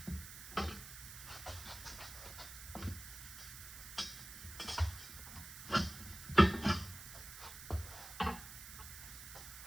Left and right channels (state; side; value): noise; right; hiss, 11 dB below the sound